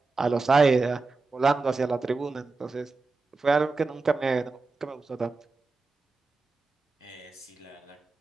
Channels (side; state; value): left; quieter; 3.8 dB